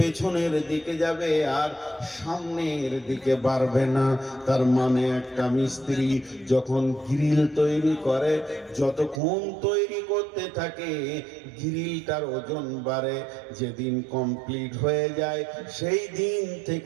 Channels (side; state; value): left; drops out; at 9.2 s